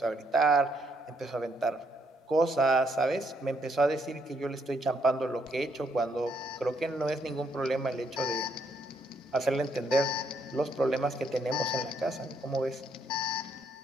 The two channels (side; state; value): both; normal; correlation 0.73